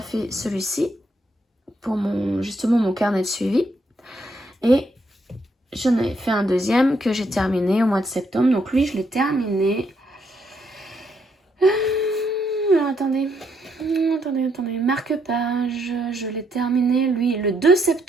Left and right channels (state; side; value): normal; both; correlation 0.75